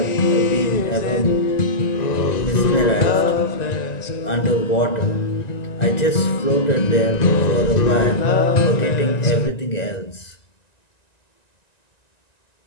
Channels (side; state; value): right; late; 1.9 ms